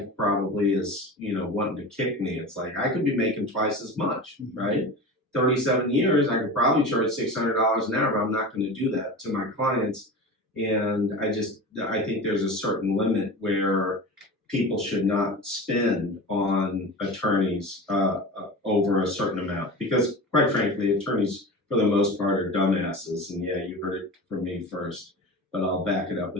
probably is, wanting to kick me. It's like, I could be making twice as much, right? 37 years, I could probably charge $600 an hour, but I'm not going to do that to my clients. And I think there's a certain limit where people should not spend on attorneys over a certain amount, because quite frankly, attorneys for the most part are dumbasses. And yeah, you heard it from me first, but I'll back it up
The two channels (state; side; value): normal; both; correlation 0.31